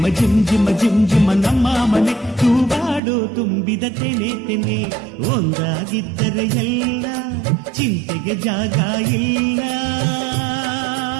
ಜುಮ್ ಜುಮ ಜುಮ್ ಜುಮ ನಮ್ಮ ಮನೆ ತೂಗಾಡೋ ತುಂಬಿದ ತೆನೆ ತೆನೆ ಒಂದಾಗಿದ್ದರೆ ಎಲ್ಲ ಚಿಂತೆಗೆ ಜಾಗ ಇಲ್ಲ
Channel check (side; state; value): left; drops out; at 3.0 s